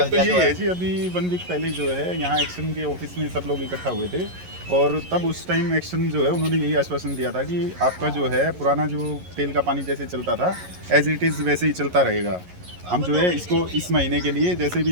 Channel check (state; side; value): late; left; 11 ms